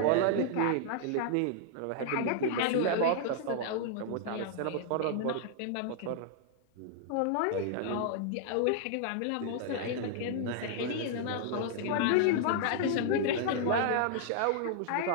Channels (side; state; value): both; different; correlation -0.01